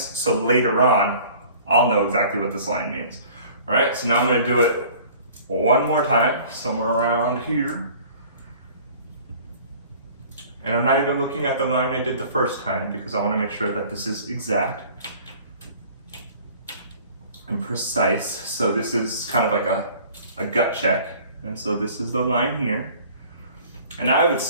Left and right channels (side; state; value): both; inverted; correlation -0.49